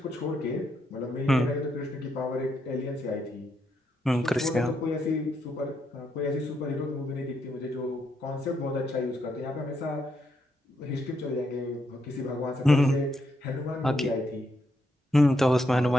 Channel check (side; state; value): both; normal; correlation 0.79